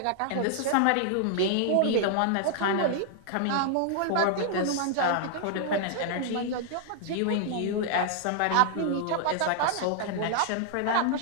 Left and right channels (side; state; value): both; different; correlation 0.00